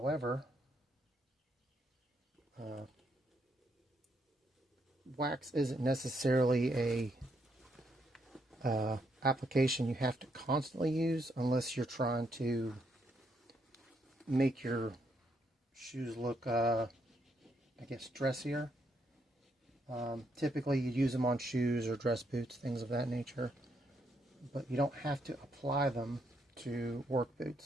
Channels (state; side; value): normal; both; correlation 0.75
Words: wax isn't necessarily a application you have to constantly use unless you're trying to make your shoes look, I guess, dressier. Typically you use them on shoes or dress boots, things of that nature, but you don't have to apply them to work